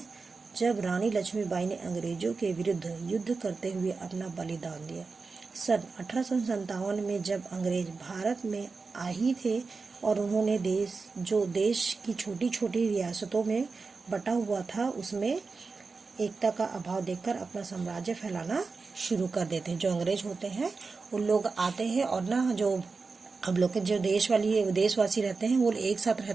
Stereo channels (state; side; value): quieter; left; 4.4 dB